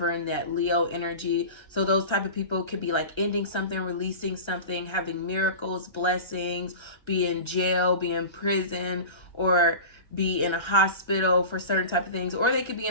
that Leo energy. So those type of people could be like ending something, releasing something, having miracles, blessings, be in jail, be in prison, or be in a hospital for certain type of things. Or they could be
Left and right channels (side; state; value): right; late; 1.3 ms